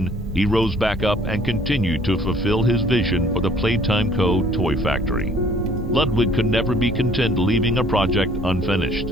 he rose back up and continued to fulfill his vision for the Playtime Co. toy factory. Ludwig could never be content leaving a project unfinished.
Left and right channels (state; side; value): normal; both; correlation 0.57